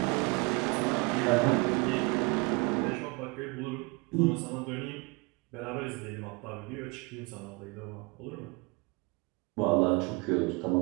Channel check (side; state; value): left; quieter; 28.2 dB